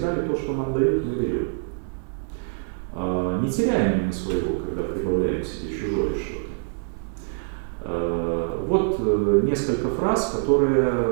ли то, что нам дают, мы берем? Не теряем ли мы своего, когда прибавляем к себе чужое что-то? Вот несколько фраз,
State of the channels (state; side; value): silent; left; digital silence